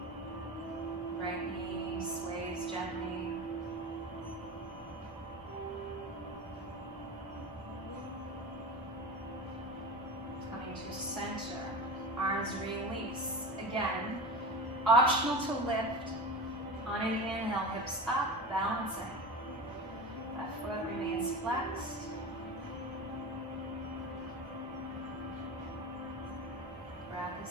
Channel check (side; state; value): both; normal; correlation 0.28